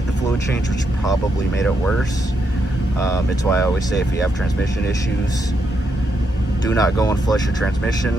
the fluid change, which probably made it worse. It's why I always say, if you have transmission issues, do not go and flush your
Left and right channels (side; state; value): both; normal; correlation 0.81